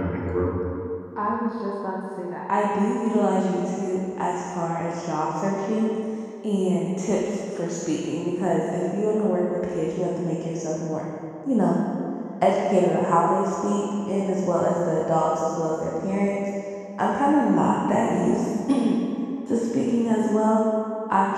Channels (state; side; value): identical; both; correlation 1.00